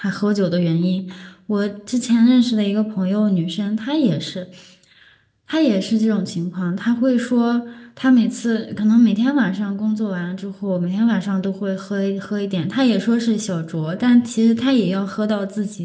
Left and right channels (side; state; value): both; identical; correlation 1.00